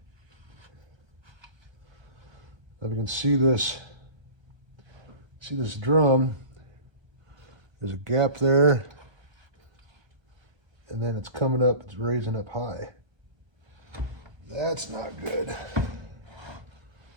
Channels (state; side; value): late; left; 1.3 ms